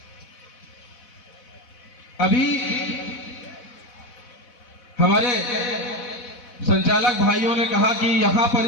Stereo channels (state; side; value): late; right; 4.0 ms